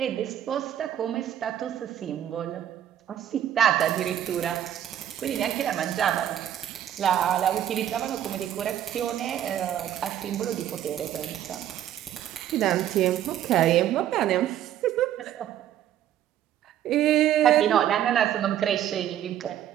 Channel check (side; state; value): left; quieter; 11.1 dB